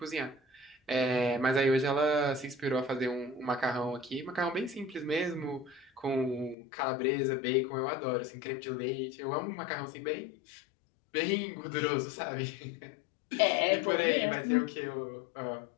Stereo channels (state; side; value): drops out; right; at 6.6 s